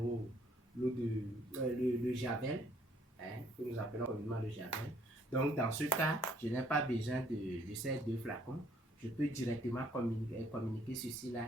le javel, que nous appelons communément le javel. Donc dans ce cas, je n'ai pas besoin de ces deux flacons. Je peux directement communiquer ceci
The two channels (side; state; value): both; normal; correlation 0.64